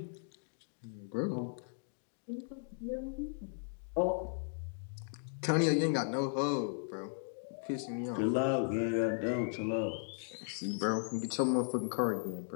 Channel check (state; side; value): silent; right; digital silence